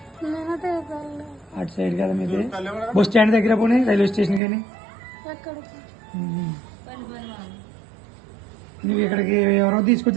అటు సైడ్ కదా మీది. బస్ స్టాండ్ దగ్గర పోనీ, రైల్వే స్టేషన్ కానీ. నువ్వు ఇక్కడికి ఎవరో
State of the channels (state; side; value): drops out; left; at 4.4 s